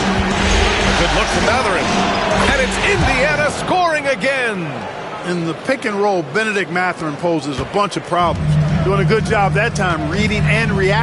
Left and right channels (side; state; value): both; identical; correlation 1.00